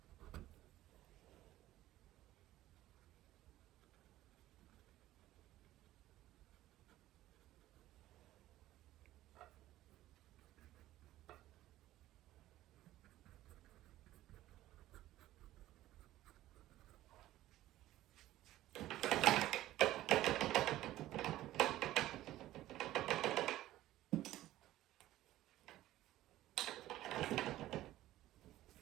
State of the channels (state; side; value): quieter; left; 14.9 dB